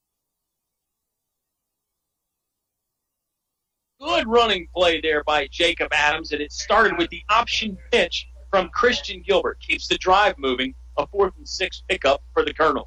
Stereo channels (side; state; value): both; identical; correlation 1.00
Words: running play there by Jacob Adams, and it started with the option pitch from Christian Gilbert. Keeps the drive moving. A 4th and 6 pickup for the Colonels.